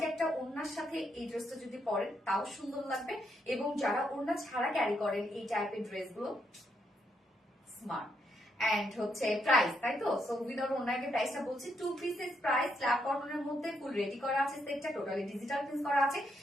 একটা ওড়নার সাথে এই ড্রেসটা যদি পরেন তাও সুন্দর লাগবে, এবং যারা ওড়না ছাড়া ক্যারি করেন এই টাইপের ড্রেসগুলো স্মার্ট। এন্ড হচ্ছে প্রাইস, তাই তো? সো উইদাউট ওনাকে প্রাইসটা বলছি, 2 পিসেস প্রাইস, স্ল্যাব কটনের মধ্যে ফুল রেডি করা আছে সেটটা, টোটালি ডিজিটাল প্রিন্ট করা আছে,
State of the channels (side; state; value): both; normal; correlation 0.78